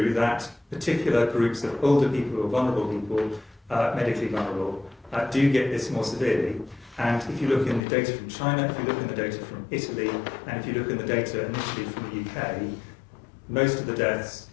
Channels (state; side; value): drops out; right; at 7.8 s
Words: that particular groups of older people or vulnerable people, medically vulnerable, do get this more severely. And if you look in the data from China, if you look in the data from Italy, and if you look in the data initially from the UK, most of the deaths